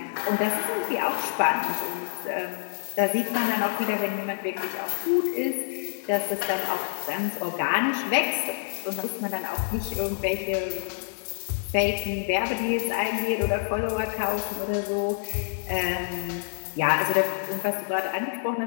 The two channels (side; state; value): right; silent; digital silence